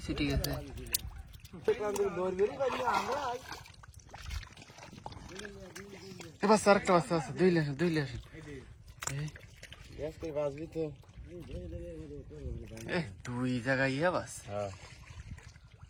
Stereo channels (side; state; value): both; identical; correlation 1.00